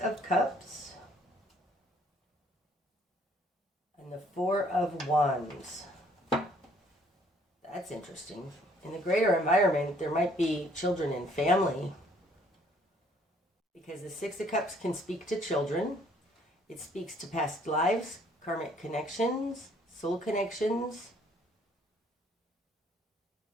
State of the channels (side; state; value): both; normal; correlation 0.62